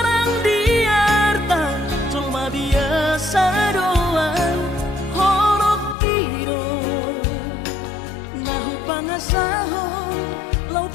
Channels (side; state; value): right; drops out; at 6.0 s